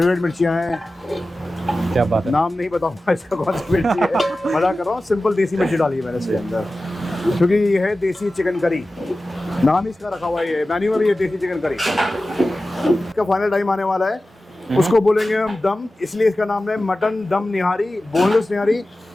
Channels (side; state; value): both; normal; correlation 0.95